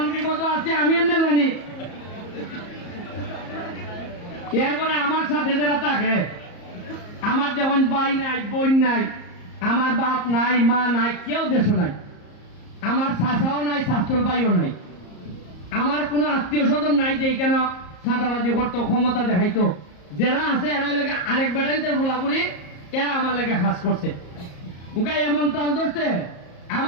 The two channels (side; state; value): right; late; 34 ms